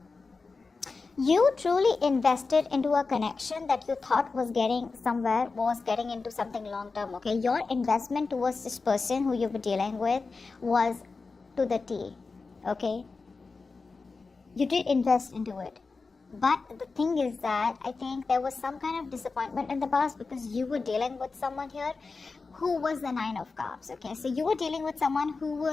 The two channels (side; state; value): right; quieter; 4.2 dB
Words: You truly invested into a connection that you thought was getting somewhere, was getting into something long term, okay? Your investment towards this person who you were dealing with was to the T, okay? You did invest into it. But the thing is that I think there was some kind of disappointment in the past because you were dealing with someone here who was the Nine of Cups. Okay, so you were dealing with someone who